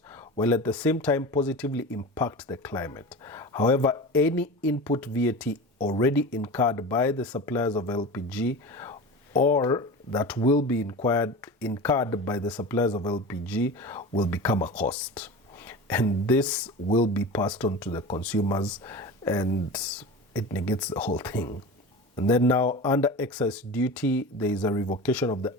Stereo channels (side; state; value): both; normal; correlation 0.30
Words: while at the same time positively impact the climate. However, any input VAT already incurred by the suppliers of LPG or that will be incurred by the suppliers of LPG will become a cost. And this will be passed on to the consumers, and it negates the whole thing. And then now, under excise duty, there is a revocation of the